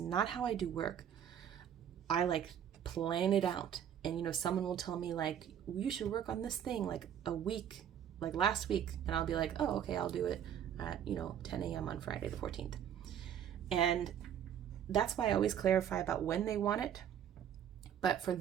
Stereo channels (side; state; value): left; quieter; 9.4 dB